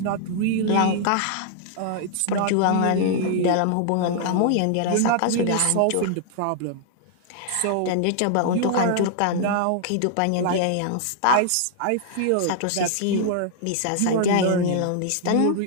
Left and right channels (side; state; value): both; different; correlation -0.01